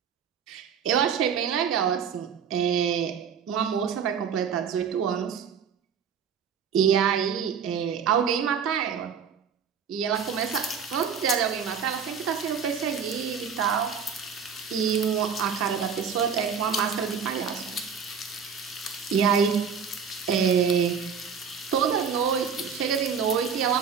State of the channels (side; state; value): left; quieter; 6.9 dB